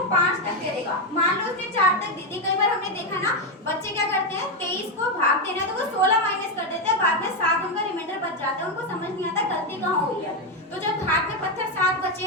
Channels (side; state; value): both; normal; correlation 0.07